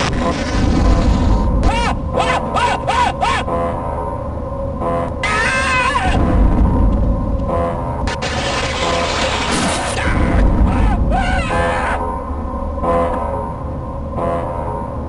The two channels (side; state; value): both; identical; correlation 1.00